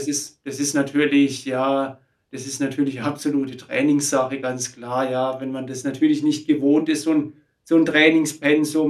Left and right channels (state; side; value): identical; both; correlation 1.00